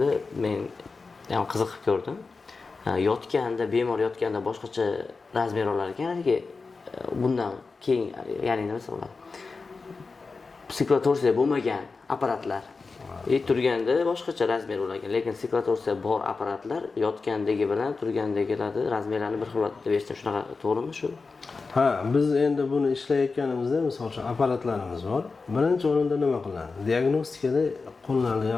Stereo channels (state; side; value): quieter; right; 4.3 dB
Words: men ham qiziqib ko'rdim. Yotganda, bemor yotganda boshqacha razmer olar ekan, bundan keyin, ya'ni nima bo'ladi? Siklotorsiya bo'lmagan apparatlar turganda boshqacha razmer bo'lar, lekin siklotorsiya bor apparatlar yotgandagi bilan turgandagilarni razmerlarni bir xil deb eshitdim. Shunaqa to'g'rimi shu? Ha, biz endi buni ishlayotganimizda, misol uchun apparatlarimiz bor. Birinchi o'rinda nima qiladi? Diagnostikada qo'llanilgan